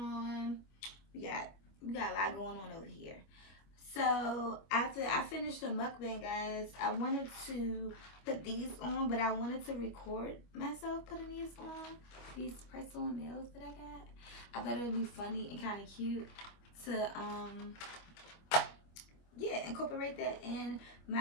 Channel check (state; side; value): late; right; 25 ms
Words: We got a lot going on over here. So after I finished the mukbang, guys, I wanted to put these on, but I wanted to record myself putting these on, these press-on nails that I got. I thought it would be funny and kind of cute to incorporate that in